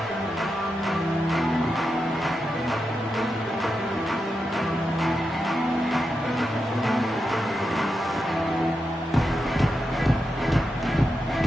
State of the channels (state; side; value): normal; both; correlation 0.87